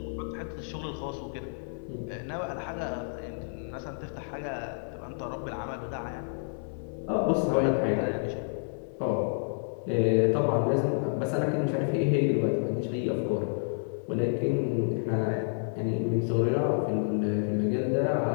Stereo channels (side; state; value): right; silent; 58 dB below the other